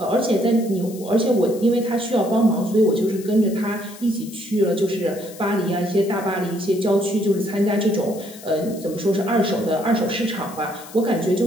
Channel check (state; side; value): noise; left; hiss, 18 dB below the sound